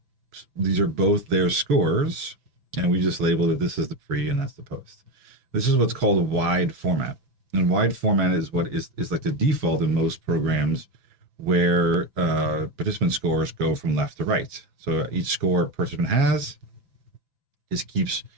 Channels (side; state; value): left; late; 6.1 ms